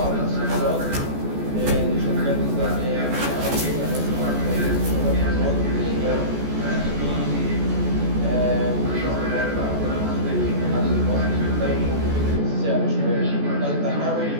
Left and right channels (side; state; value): left; late; 14 ms